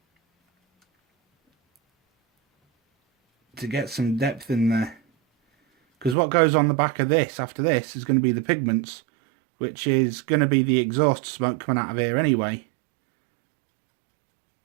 to get some depth in there. Because what goes on the back of this after this is going to be the pigments, which is going to be the exhaust smoke coming out of here anyway.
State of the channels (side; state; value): left; drops out; at 6.2 s